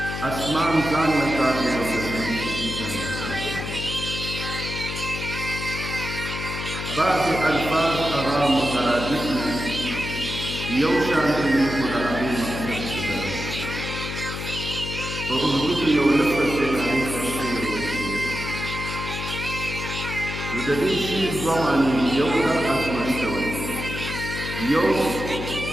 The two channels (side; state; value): left; noise; hum, 6 dB below the sound